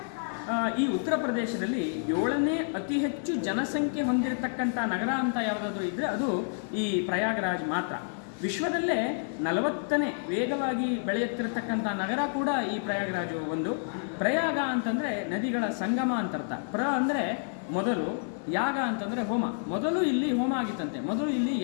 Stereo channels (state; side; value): silent; right; 58 dB below the other